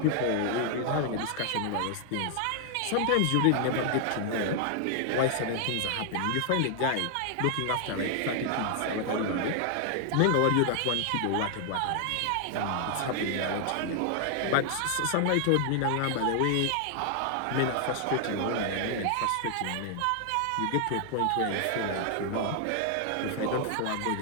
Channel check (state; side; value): different; both; correlation 0.00